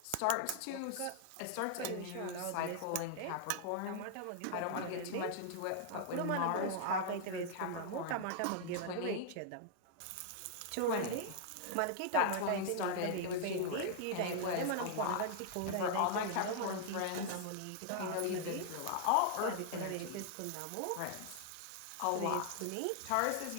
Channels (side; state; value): both; different; correlation -0.01